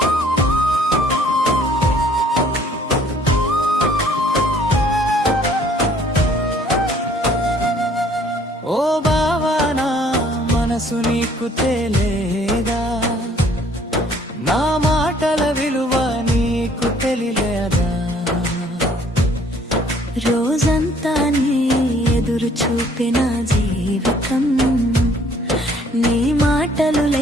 ఓ బావా నా మనసు నీకు తెలియదా, నా మాటల విలువ నీకు తెలియదా. రోజంతా నీ ఎదురు చూపిన జీవితం, నీ మాటలు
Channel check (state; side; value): normal; both; correlation 0.59